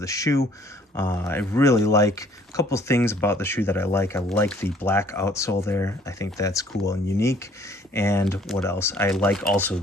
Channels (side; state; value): both; normal; correlation 0.58